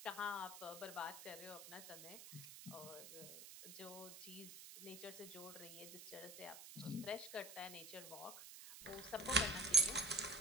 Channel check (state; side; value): noise; right; hiss, 12 dB below the sound